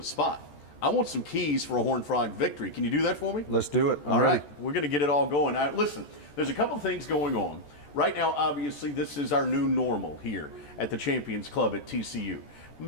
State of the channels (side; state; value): right; late; 14 ms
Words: spot. I want some keys for a Horned Frog victory. Can you do that for me? Let's do it. All right. We're going to get it all going. Listen, there's a couple things going on. Right now, obviously, this is our new normal here at the Champions Club at TCU.